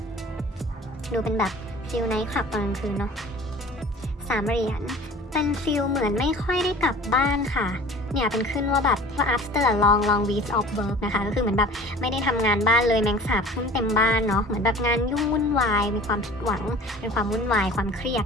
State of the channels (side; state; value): both; normal; correlation 0.44